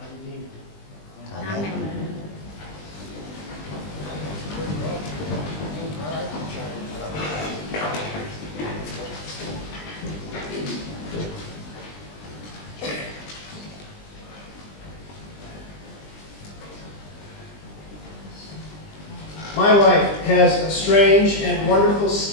Redeemer. Amen. My wife has a strange and wonderful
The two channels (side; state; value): right; late; 20 ms